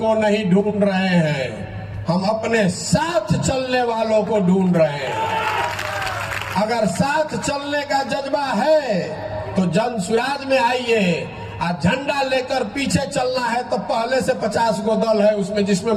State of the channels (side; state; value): both; identical; correlation 1.00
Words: नहीं ढूंढ रहे हैं, हम अपने साथ चलने वालों को ढूंढ रहे हैं। अगर साथ चलने का जज्बा है तो जन सुराज में आइए। आज झंडा लेकर पीछे चलना है तो पहले से 50 गो दल है, उसमें जिसमें